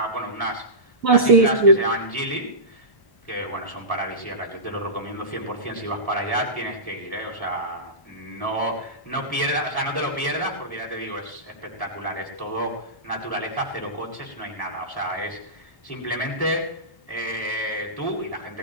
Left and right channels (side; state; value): right; late; 1.1 ms